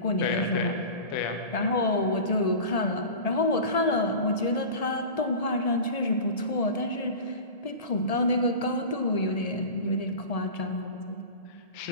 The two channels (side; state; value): right; late; 1.7 ms